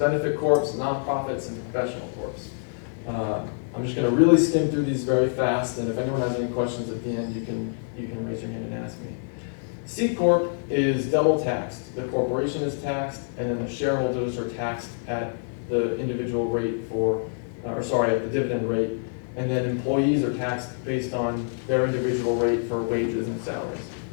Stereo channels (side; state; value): right; silent; 61 dB below the other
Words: corps, nonprofits, and professional corps. I'm just going to really skim through these very fast, and if anyone has any questions at the end, you can raise your hand and ask me. C Corp is double taxed. The corporation is taxed, and then the shareholders are taxed at the individual rate at the dividend rate, and then employees are taxed based on their individual rate for wages and salaries.